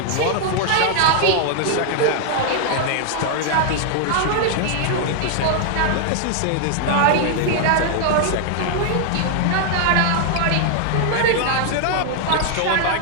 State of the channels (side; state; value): both; different; correlation 0.00